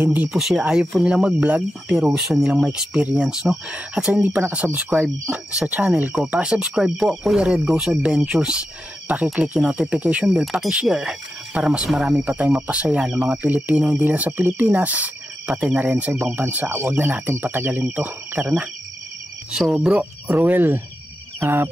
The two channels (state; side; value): normal; both; correlation 0.89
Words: po sila, ayaw po nilang mag-vlog pero gusto nilang ma-experience, no? At sa hindi pa nakasubscribe sa channel ko, pakisubscribe po, Kuya Red Goes Adventures. Paki-click yung notification bell, paki-share para mas marami pa tayong mapasaya ng mga Pilipino, hindi lang sa Pilipinas, pati na rin sa ibang bansa. Huwag na natin patagalin to, tara na. So bro, Ruel,